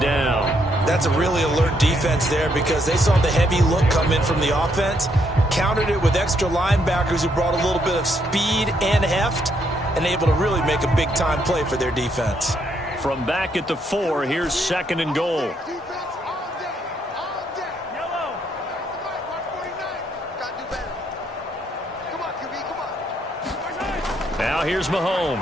That's a really alert defense there because they saw the heavy look come in from the offense, countered it with extra linebackers who brought a little bit of speed and heft, and able to really make a big-time play for their defense. From back at the 4, here's 2nd and goal. Now here's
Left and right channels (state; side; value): normal; both; correlation 0.74